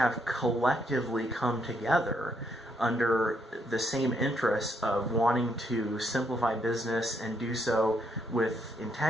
collectively come together under the same interests of wanting to simplify business and do so with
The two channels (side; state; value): both; normal; correlation 0.74